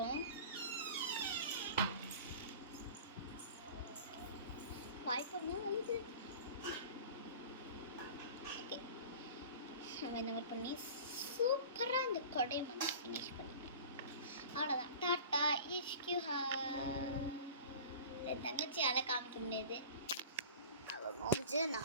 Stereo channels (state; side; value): inverted; both; correlation -0.39